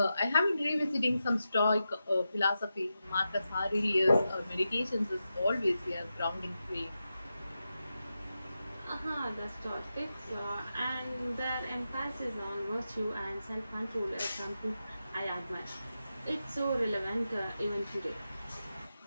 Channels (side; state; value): both; inverted; correlation -0.90